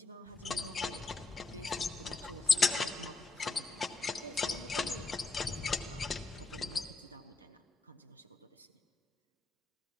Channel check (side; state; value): right; quieter; 3.7 dB